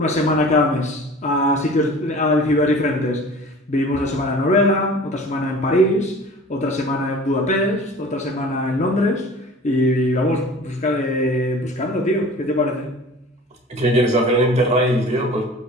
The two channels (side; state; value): both; normal; correlation 0.42